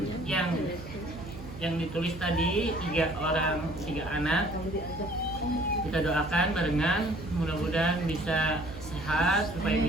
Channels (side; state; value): right; noise; hum, 13 dB below the sound